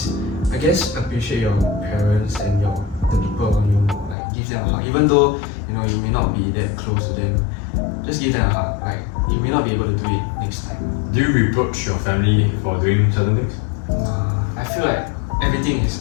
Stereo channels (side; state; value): right; drops out; at 4.2 s